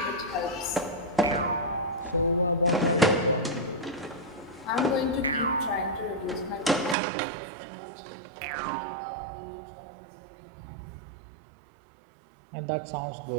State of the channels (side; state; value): left; drops out; at 7.0 s